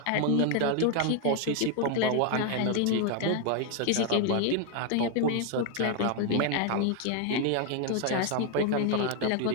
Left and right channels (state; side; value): different; both; correlation 0.01